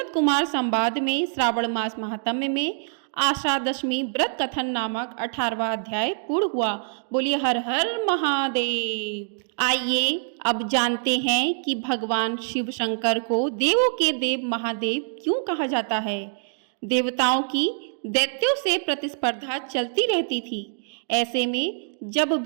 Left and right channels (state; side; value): silent; left; digital silence